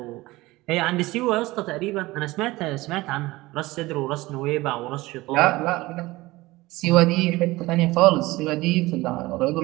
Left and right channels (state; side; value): quieter; left; 19.8 dB